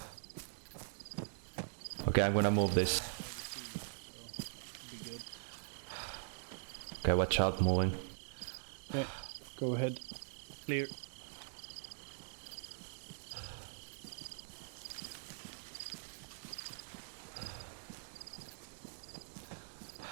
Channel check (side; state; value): left; silent; digital silence